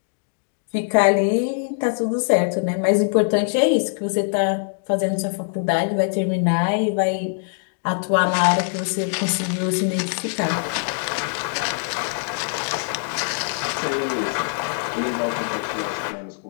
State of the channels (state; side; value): silent; right; digital silence